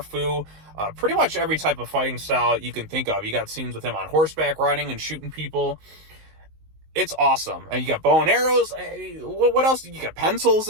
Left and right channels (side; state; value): left; late; 19 ms